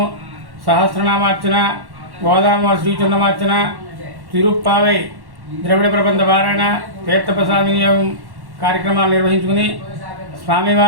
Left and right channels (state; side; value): late; left; 1.1 ms